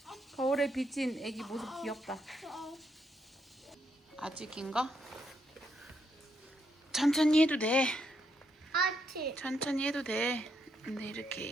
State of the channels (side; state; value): both; normal; correlation 0.78